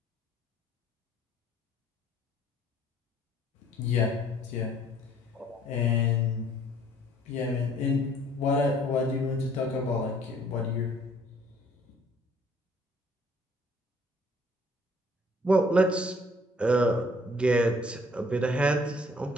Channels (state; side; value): normal; both; correlation 0.59